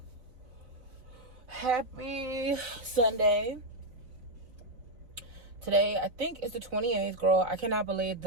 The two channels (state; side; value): late; left; 4.1 ms